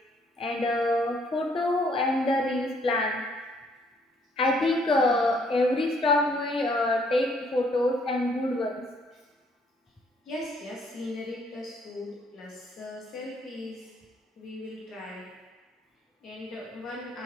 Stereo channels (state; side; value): normal; both; correlation 0.66